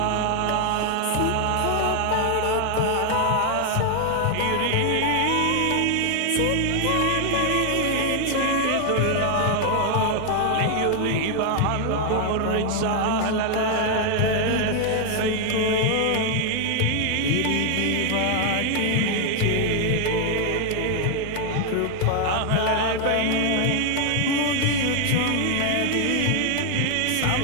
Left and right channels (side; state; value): both; different; correlation 0.00